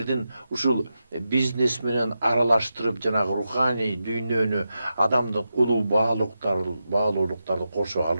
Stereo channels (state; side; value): inverted; both; correlation -0.89